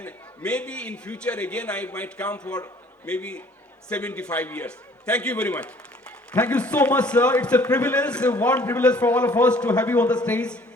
maybe in future again I might come for maybe 75 years. Thank you very much. Thank you so much, sir. It's a privilege, a warm privilege for all of us to have you on the stage.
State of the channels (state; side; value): normal; both; correlation 0.55